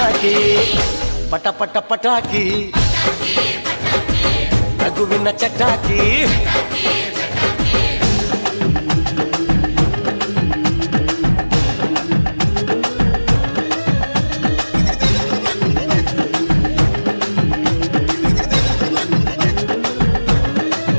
ಪಟ ಪಟ ಪಟಾಕಿ ನಗುವಿನ ಚಟಾಕಿ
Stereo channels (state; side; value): inverted; both; correlation -1.00